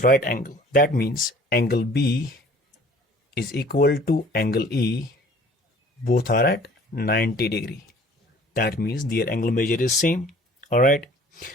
right angle. That means angle B is equal to angle E, both are at 90 degree. That means their angle measure is same. All right,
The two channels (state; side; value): normal; both; correlation 0.51